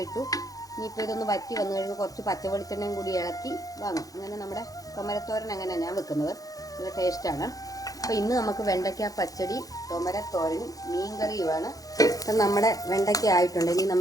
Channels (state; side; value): late; right; 0.17 ms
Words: ഇനിയിപ്പോൾ ഇതൊന്ന് വറ്റി വന്നു കഴിയുമ്പോൾ കുറച്ച് പച്ചവെളിച്ചെണ്ണയും കൂടി ഇളക്കി വാങ്ങും. അങ്ങനെ നമ്മുടെ തോമരത്തോരൻ അങ്ങനെയാണ് ഞാൻ വെക്കുന്നത്. നല്ല ടേസ്റ്റാണ്. അപ്പോൾ ഇന്ന് നമുക്ക് വെണ്ടയ്ക്ക പച്ചടി, തോമരത്തോരനും മീൻകറിയുമാണ്. അപ്പം നമ്മുടെ വെണ്ടയ്ക്ക ആയിട്ടുണ്ട്. ഇനി